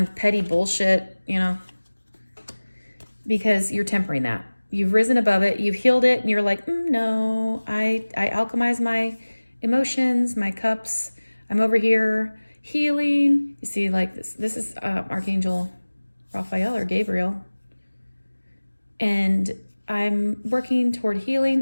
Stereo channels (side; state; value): both; inverted; correlation -1.00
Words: petty bullshit, because you're tempering that. You've risen above it, you've healed it, and you're like, no, I alchemize my emotions, my cups. I'm over here healing. You see, like this is Archangel Raphael or Gabriel. And I'm working toward